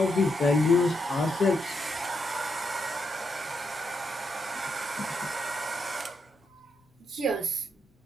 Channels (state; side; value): normal; both; correlation 0.81